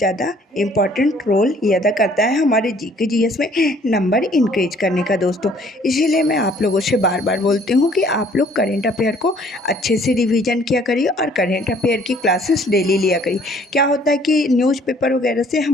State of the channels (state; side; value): normal; both; correlation 0.59